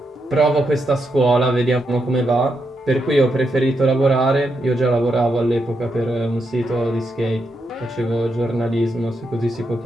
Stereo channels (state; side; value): normal; both; correlation 0.82